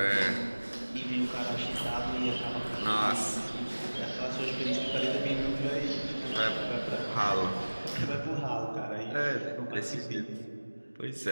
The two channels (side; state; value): both; inverted; correlation -1.00